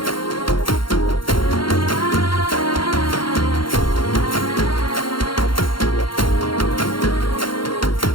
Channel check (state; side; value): late; right; 0.73 ms